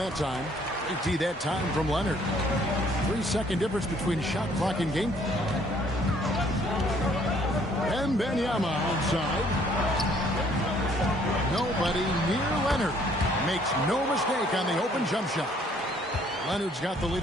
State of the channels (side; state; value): both; normal; correlation 0.62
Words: time. 18 that time from Leonard. 3-second difference between shot clock and game. And Wembanyama outside. Nobody near Leonard. Makes no mistake on the open jump shot. Leonard's got the lead